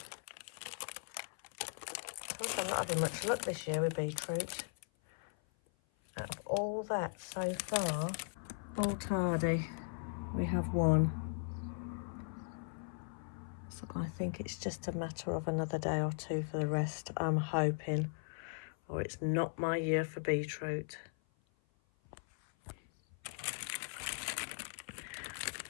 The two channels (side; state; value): right; silent; 52 dB below the other